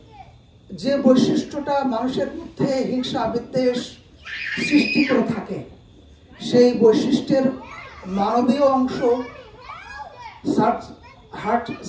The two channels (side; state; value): both; identical; correlation 1.00